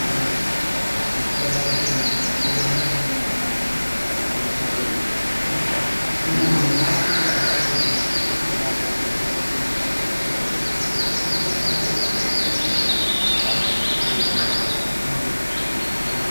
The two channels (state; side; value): inverted; both; correlation -1.00